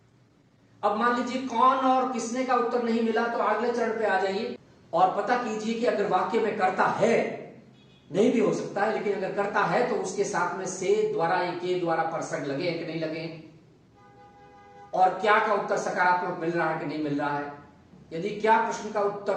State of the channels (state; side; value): identical; both; correlation 1.00